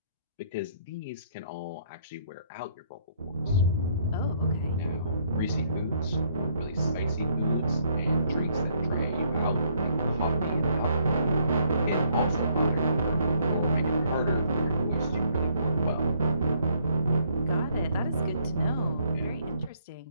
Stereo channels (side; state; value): both; inverted; correlation -0.67